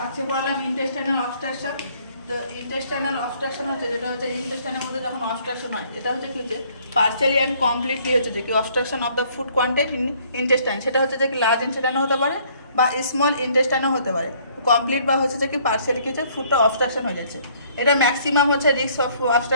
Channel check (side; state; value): both; inverted; correlation -0.61